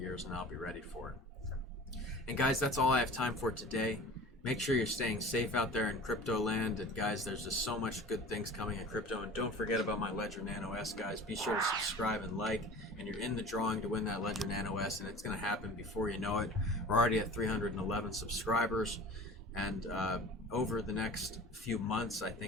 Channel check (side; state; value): both; normal; correlation 0.40